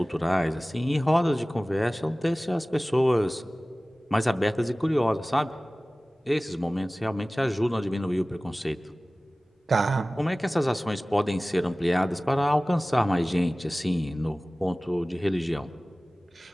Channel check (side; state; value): both; normal; correlation 0.98